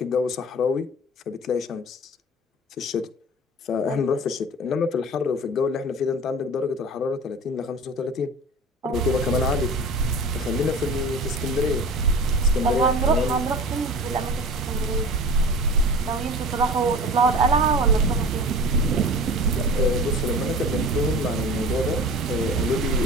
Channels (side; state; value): both; normal; correlation 0.37